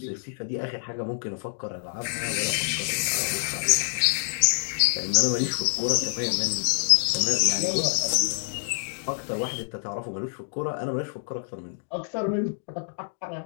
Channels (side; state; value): right; silent; digital silence